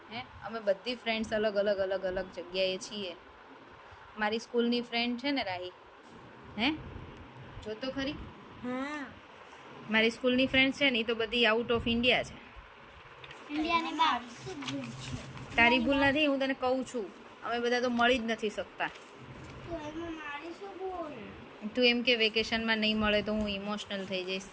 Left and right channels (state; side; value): identical; both; correlation 1.00